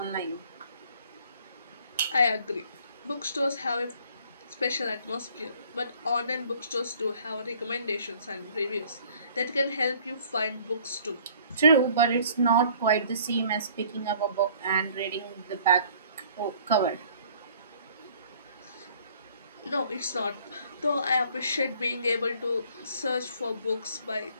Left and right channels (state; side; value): inverted; both; correlation -0.56